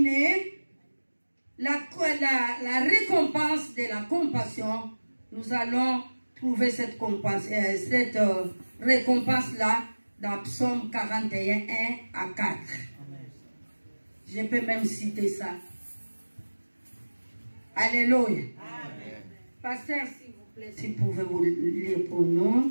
la récompense de la compassion, nous allons trouver cette récompense-là dans Psaume 41, 1 à 4. Je peux même citer ça. Alléluia. Amen. Pasteur, s'il vous plaît, si vous pouvez vous lire pour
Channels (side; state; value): both; inverted; correlation -1.00